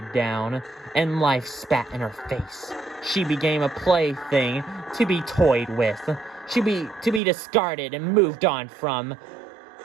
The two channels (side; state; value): left; drops out; at 7.2 s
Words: down, and life spat in her face. She became a plaything to be toyed with. To be discarded and moved on from.